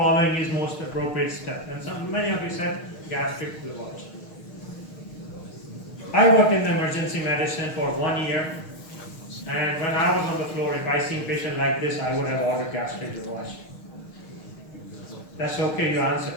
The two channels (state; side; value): late; right; 6.5 ms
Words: is most appropriate step? And many of you said gastric lavage. I worked in emergency medicine for 1 year, and when I was on the floor, if I see a patient like this, I would have ordered gastric lavage. That's okay, you answer.